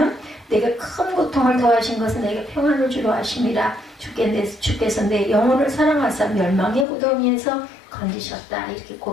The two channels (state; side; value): drops out; right; at 6.9 s